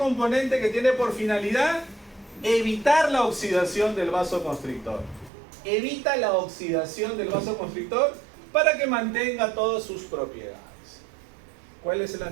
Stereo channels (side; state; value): left; drops out; at 5.3 s